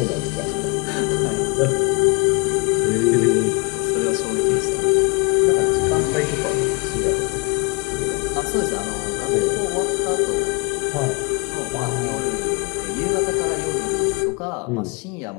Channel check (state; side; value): quieter; right; 30.0 dB